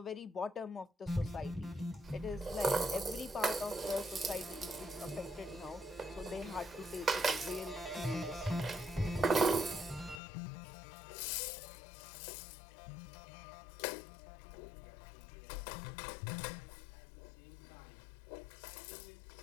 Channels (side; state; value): right; drops out; at 10.2 s